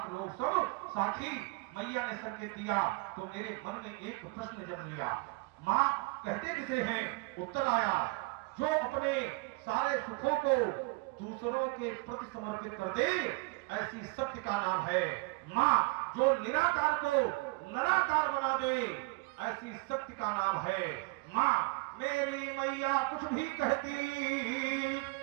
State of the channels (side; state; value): left; quieter; 26.9 dB